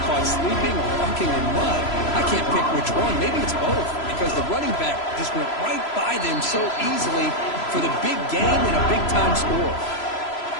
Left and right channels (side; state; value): right; late; 3.0 ms